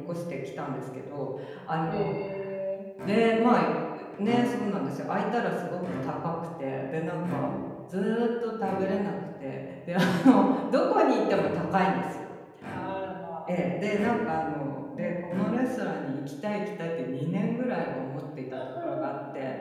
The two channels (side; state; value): both; identical; correlation 1.00